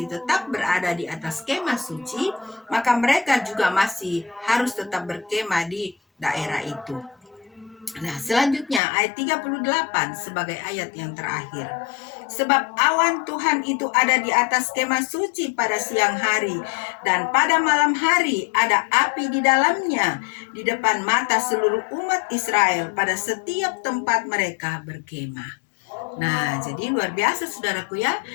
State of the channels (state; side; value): drops out; right; at 8.8 s